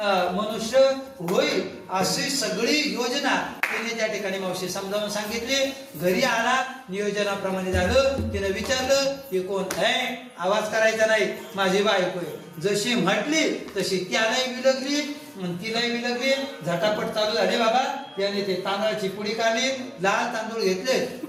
मनुष्य होईल. अशी सगळी योजना तिने त्या ठिकाणी मावशी समजावून सांगितली. घरी आला नियोजनाप्रमाणे झालं. तिने विचारलं हे कोण आहे. आवाज करायचा नाही माझी बायको आहे. जशी म्हटली तशी त्यालाही विलगली तिलाही विलगली. झटापट चालू झाले बाबा. त्याने ते तांदळाची पुडी काढली लाल तांदूळ घेतले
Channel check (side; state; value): both; identical; correlation 1.00